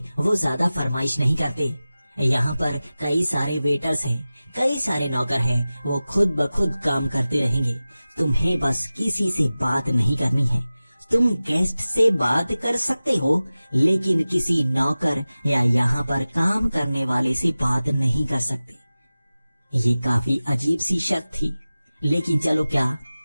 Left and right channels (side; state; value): both; inverted; correlation -0.96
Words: वो ज्यादा फरमाइश नहीं करते। यहाँ पर कई सारे वेटर्स हैं, कई सारे नौकर हैं, वो खुद ब खुद काम करते रहेंगे। तुम्हें बस किसी से बात नहीं करनी है। तुम गेस्ट से बात कर सकते हो, लेकिन किसी नौकर या यहाँ पर काम करने वाले से बात नहीं कर सकते। ये काफी अजीब सी शर्त थी, लेकिन चलो क्या,